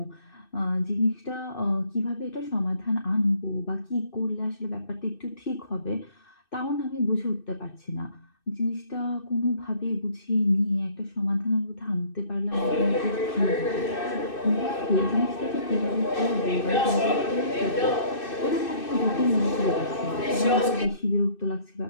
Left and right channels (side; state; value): right; late; 2.6 ms